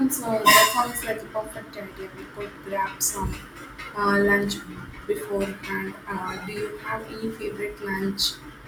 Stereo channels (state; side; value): identical; both; correlation 1.00